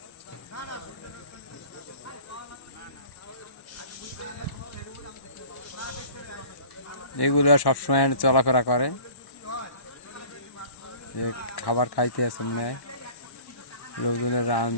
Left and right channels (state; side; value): late; right; 1.1 ms